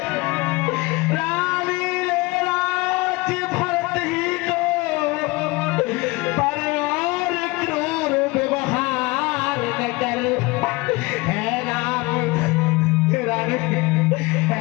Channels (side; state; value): right; quieter; 23.5 dB